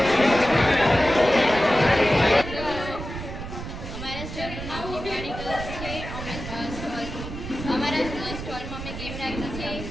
અમારા સ્ટોલનું નામ નિમાણી ગર્લ્સ છે. અમારા સ્ટોલમાં અમે ગેમ રાખી છે.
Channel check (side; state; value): right; noise; rumble, 9 dB below the sound